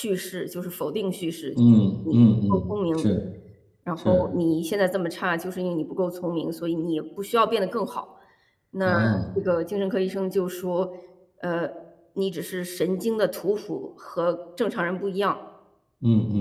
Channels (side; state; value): both; identical; correlation 1.00